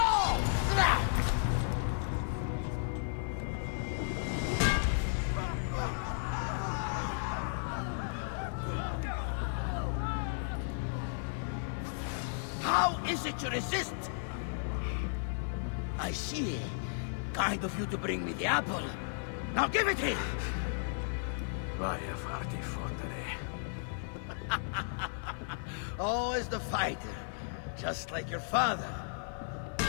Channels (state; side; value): silent; right; digital silence